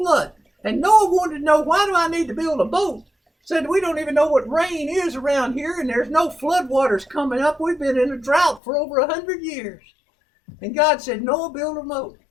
And Noah wanted to know, why do I need to build a boat? Said, we don't even know what rain is around here, and there's no flood waters coming up. We've been in a drought for over 100 years. And God said, Noah, build a boat.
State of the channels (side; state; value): right; drops out; at 8.6 s